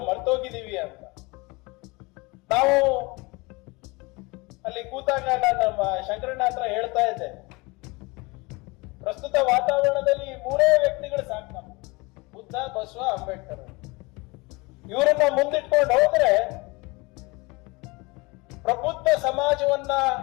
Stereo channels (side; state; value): right; quieter; 25.4 dB